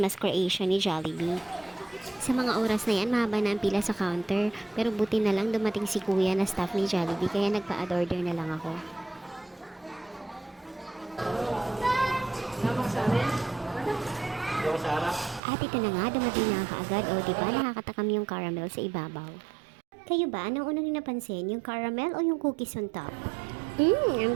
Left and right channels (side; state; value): left; drops out; at 15.4 s